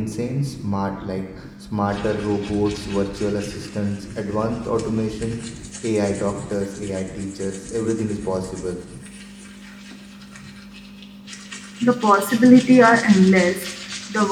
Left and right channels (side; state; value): both; identical; correlation 1.00